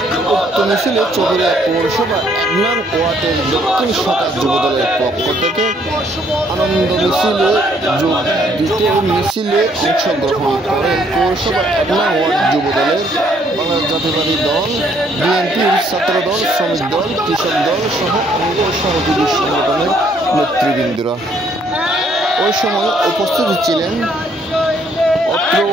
উক্ত মিছিলে চকরিয়া পৌরসভা 1 নং ওয়ার্ডের দক্ষিণ শাখা যুব দলের পক্ষ থেকে আনন্দ মিছিলে যোগ দিতে মিছিলে অংশগ্রহণ করেন পৌরসভা 1 নং ওয়ার্ড যুব দলের বাংলাদেশ জাতীয়তাবাদী দল, বিএনপির ছাত্রদল, শ্রমিক দল, কৃষক দল সহ অঙ্গ সহযোগী সংগঠনের নেতৃবৃন্দরা। ওই সময় উপস্থিত ছিলেন অত্র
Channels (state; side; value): normal; both; correlation 0.66